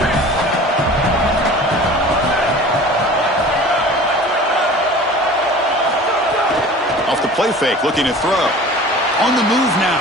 Play fake, looking to throw. On the move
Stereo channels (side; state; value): both; normal; correlation 0.42